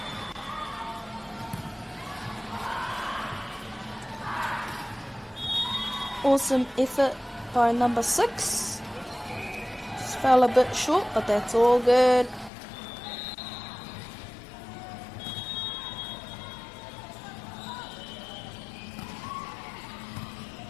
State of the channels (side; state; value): right; drops out; at 12.5 s